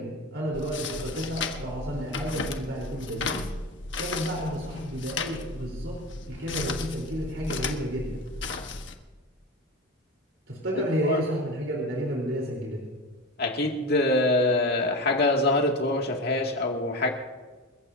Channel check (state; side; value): normal; both; correlation 0.26